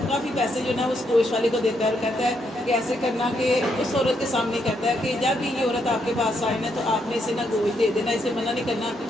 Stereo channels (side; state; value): both; normal; correlation 0.77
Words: کافی پیسے جو نا اس گوشت والے کو دیتا ہے اور کہتا ہے کہ ایسے کرنا، کہ اس عورت کے سامنے کہتا ہے کہ جب بھی یہ عورت آپ کے پاس آئے نا تو آپ نے اسے نا گوشت دے دینا، اسے منع نہیں کرنا،